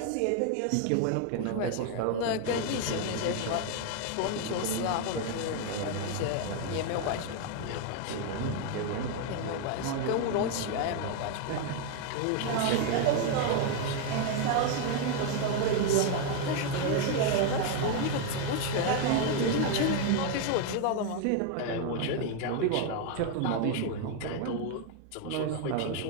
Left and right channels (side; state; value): both; different; correlation 0.01